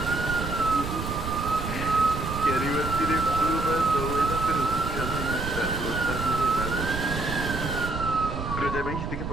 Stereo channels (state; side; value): noise; right; rumble, 5 dB below the sound